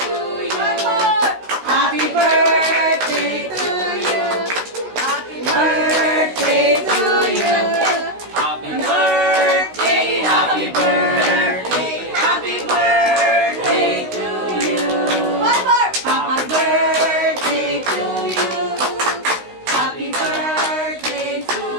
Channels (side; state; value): left; late; 16 ms